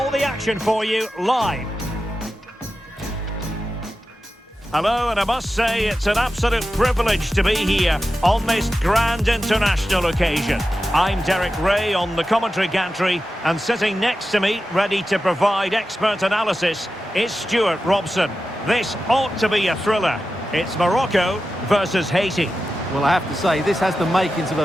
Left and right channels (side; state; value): both; normal; correlation 0.92